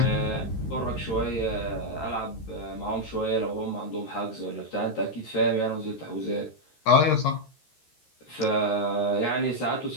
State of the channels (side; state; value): right; late; 13 ms